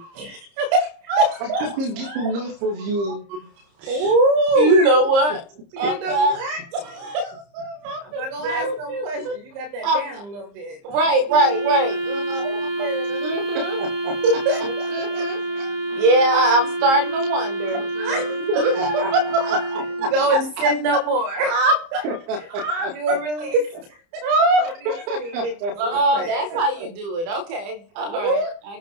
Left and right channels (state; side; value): late; left; 30 ms